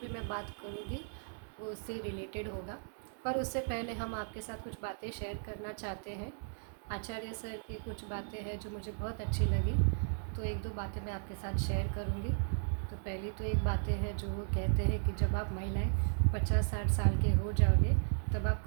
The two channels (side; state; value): left; silent; digital silence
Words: मैं बात करूँगी वो उससे रिलेटेड होगा। पर उससे पहले हम आपके साथ कुछ बातें शेयर करना चाहते हैं। आचार्य सर की कुछ बातें हैं जो मुझे बहुत अच्छी लगी, तो एक दो बातें मैं आपके साथ शेयर करूँगी। तो पहली तो एक बातें हैं जो वो कहते हैं कि जब आप महिलाएं 50-60 साल के हो जाओगे तब आप